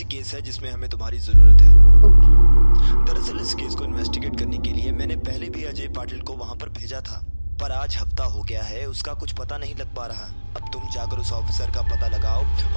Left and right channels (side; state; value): both; inverted; correlation -1.00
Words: केस है जिसमें हमें तुम्हारी जरूरत है। ओके। दरअसल इस केस को इन्वेस्टिगेट करने के लिए मैंने पहले भी अजय पाटिल को वहां पर भेजा था, पर आज हफ्ता हो गया है उसका कुछ पता नहीं लग पा रहा। अब तुम जाकर उस ऑफिसर का पता लगाओ